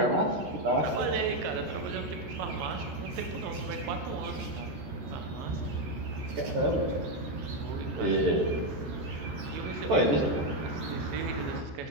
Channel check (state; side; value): late; left; 13 ms